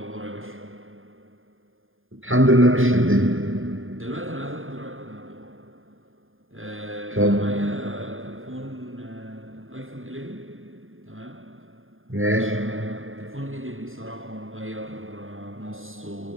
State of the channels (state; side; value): late; left; 0.59 ms